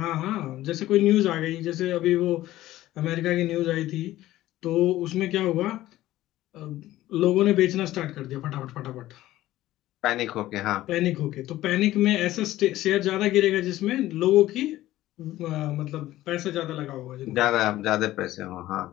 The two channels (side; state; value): right; quieter; 15.3 dB